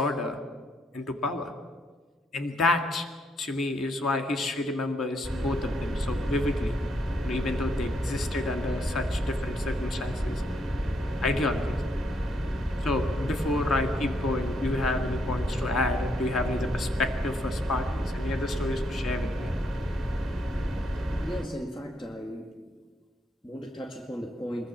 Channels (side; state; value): both; normal; correlation 0.75